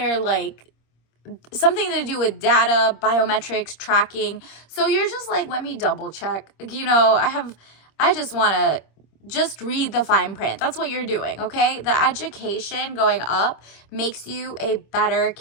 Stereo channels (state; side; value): late; right; 26 ms